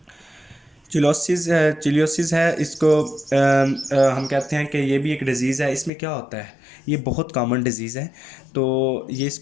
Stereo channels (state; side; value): drops out; right; at 5.9 s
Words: चिलियोसिस है। इसको हम कहते हैं कि ये भी एक डिज़ीज़ है। इसमें क्या होता है, ये बहुत कॉमन डिज़ीज़ है। तो ये